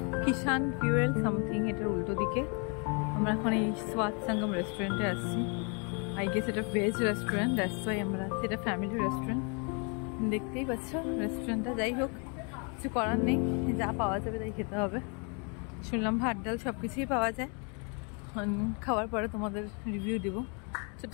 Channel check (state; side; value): quieter; right; 36.2 dB